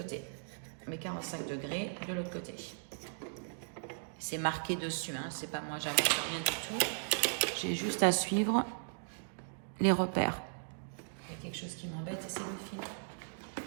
Mes 45 degrés de l'autre côté. C'est marqué dessus, hein. C'est pas moi, j'invente rien du tout. J'ai juste à suivre les repères. Il y a quelque chose qui m'embête et c'est le fil.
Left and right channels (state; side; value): silent; left; digital silence